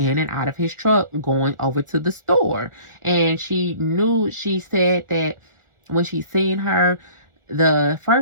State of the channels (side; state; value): left; late; 1.4 ms